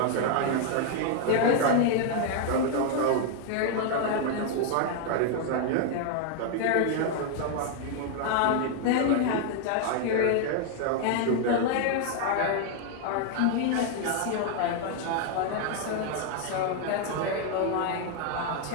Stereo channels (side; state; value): both; different; correlation 0.00